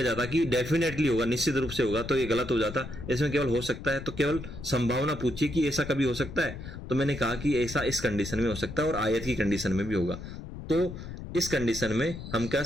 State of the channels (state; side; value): noise; left; rumble, 10 dB below the sound